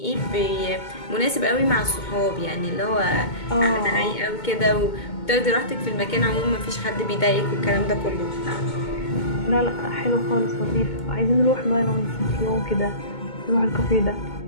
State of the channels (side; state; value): right; late; 2.2 ms